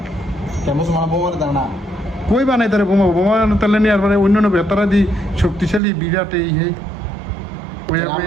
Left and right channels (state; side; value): drops out; left; at 5.8 s